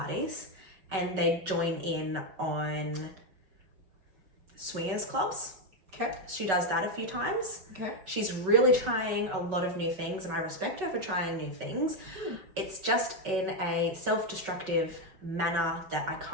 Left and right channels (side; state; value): left; late; 5.3 ms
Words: and they join in on swingers clubs. Okay. She does that a few times. Okay. She's really trying a lot of new things, and I respect her for trying new things. It's just in a self-destructive manner that I